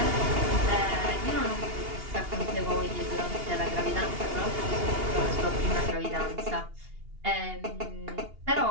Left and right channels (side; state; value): left; late; 2.8 ms